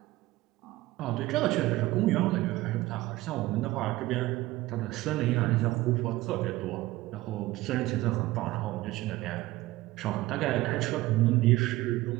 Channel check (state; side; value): quieter; left; 18.0 dB